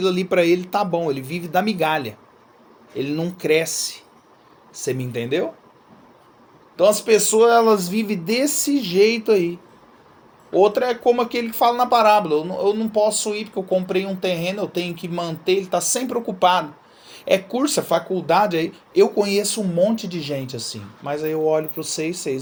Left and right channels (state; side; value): identical; both; correlation 1.00